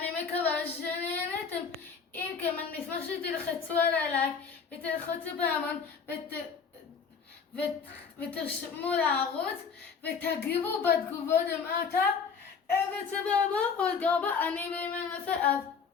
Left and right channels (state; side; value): quieter; right; 5.9 dB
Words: מקווה שנהנתם. אם כן, אני אשמח שתלחצו על הלייק ותלחצו בהמון ותרשמו לערוץ ותגיבו בתגובות למטה וסבבה, עוד גרבה, אני בימי נעשה אז